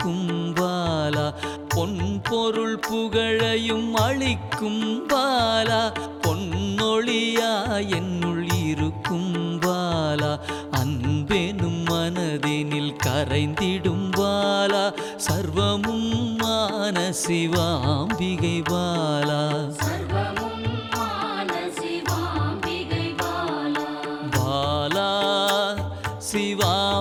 பாலா. பொன் பொருள் புகழையும் அளிக்கும் பாலா, பொன்னொழியா என்னுள் இருக்கும் பாலா. அன்பெனும் மனதினில் கரைந்திடும் பாலா, சர்வமும் மான சிவாம்பிகை பாலா. பாலா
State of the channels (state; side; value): identical; both; correlation 1.00